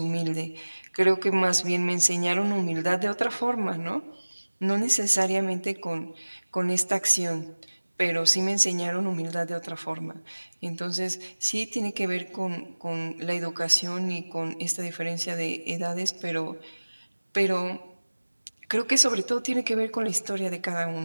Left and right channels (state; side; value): inverted; both; correlation -1.00